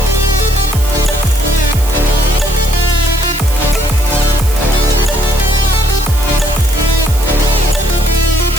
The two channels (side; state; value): right; noise; hiss, 12 dB below the sound